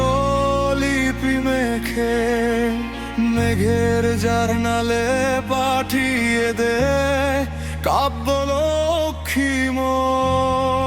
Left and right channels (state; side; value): identical; both; correlation 1.00